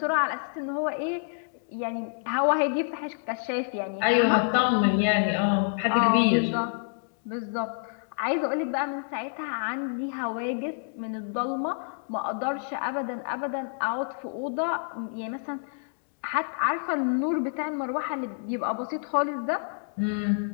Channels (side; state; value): right; silent; digital silence